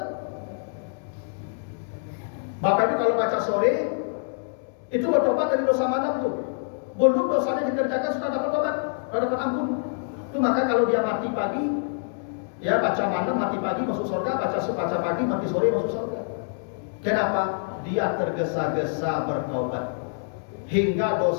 Bapak Ibu kalau baca sore itu bertobat dari dosa malam tuh. Belum dosanya dikerjakan sudah dapat tobat, sudah dapat ampun. Itu maka kalau dia mati pagi, ya baca malam mati pagi masuk surga, baca pagi mati sore masuk surga. Kenapa? Dia tergesa-gesa bertobat. Hingga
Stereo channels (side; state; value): right; silent; digital silence